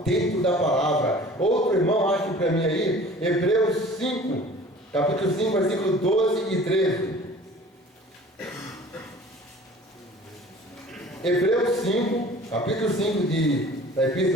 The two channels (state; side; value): normal; both; correlation 0.46